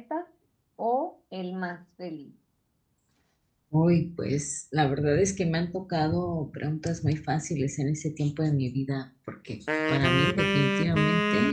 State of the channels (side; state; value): both; identical; correlation 1.00